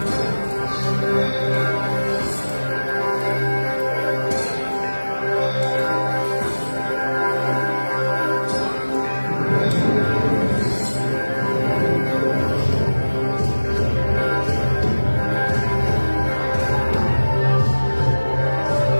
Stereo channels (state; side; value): inverted; both; correlation -1.00